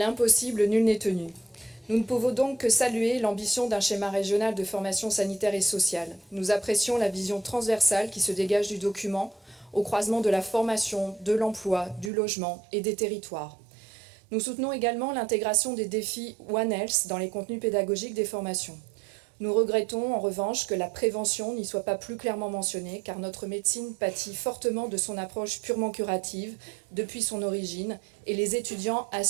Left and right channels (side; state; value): left; drops out; at 12.1 s